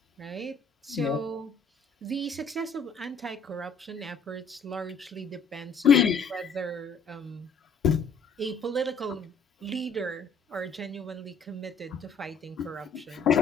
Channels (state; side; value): quieter; right; 4.3 dB